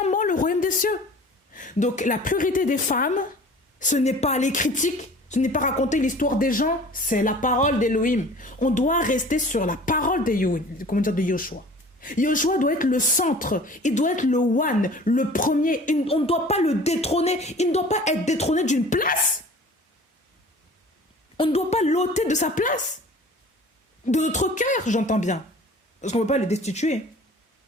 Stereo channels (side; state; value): both; normal; correlation 0.45